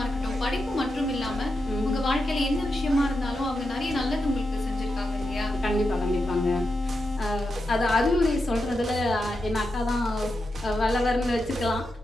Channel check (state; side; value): normal; both; correlation 0.87